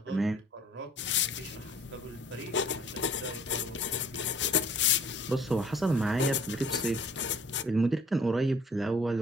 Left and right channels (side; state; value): both; normal; correlation 0.54